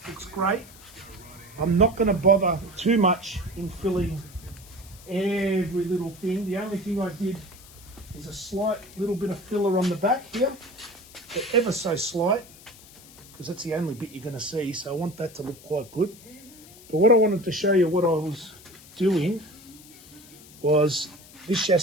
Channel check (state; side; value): noise; left; hiss, 21 dB below the sound